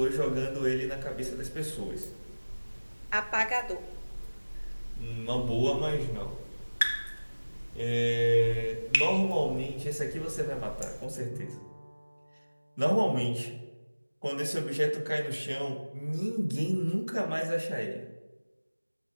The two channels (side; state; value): both; inverted; correlation -1.00